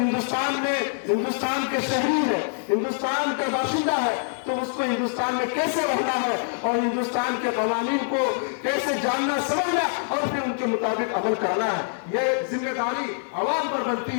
کے شہری ہے، ہندوستان کا باشندہ ہے تو اس کو ہندوستان میں کیسے رہنا ہے اور ہندوستان کے قوانین کو کیسے جاننا سمجھنا اور پھر ان کے مطابق عمل کرنا ہے۔ یہ ذمہ داری عوام پر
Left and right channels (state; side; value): silent; right; digital silence